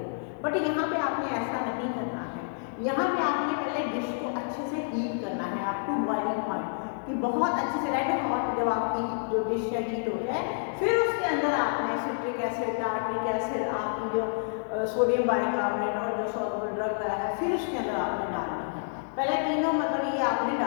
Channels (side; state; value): right; silent; 59 dB below the other